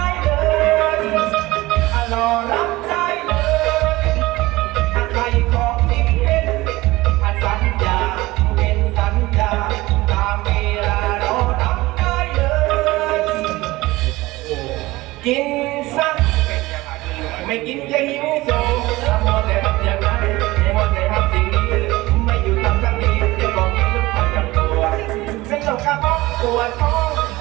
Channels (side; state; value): left; quieter; 19.6 dB